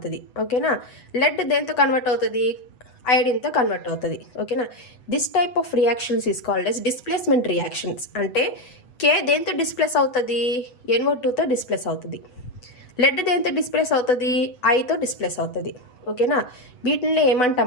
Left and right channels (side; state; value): right; late; 8.1 ms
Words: ఓకేనా. లెడ్ దేంతో కన్వర్ట్ అవుతుంది అయోడిన్తో కన్వర్ట్ అవుతుంది. ఓకేనా. This type of reactions is called as displacement reactions. అంటే K దేంతో డిస్ప్లేస్ అవుతుంది NO2తో డిస్ప్లేస్ అవుతుంది. లెడ్ దేంతో డిస్ప్లేస్ అవుతుంది Iతో డిస్ప్లేస్ అవుతుంది. ఓకేనా. వీటిని